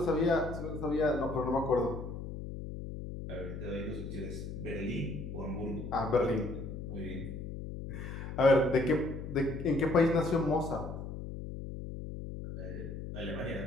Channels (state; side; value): noise; left; hum, 7 dB below the sound